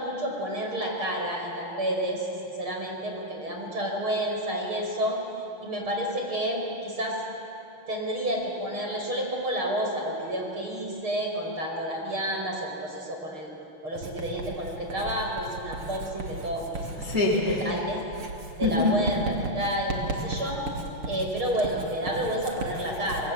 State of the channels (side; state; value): left; late; 7.0 ms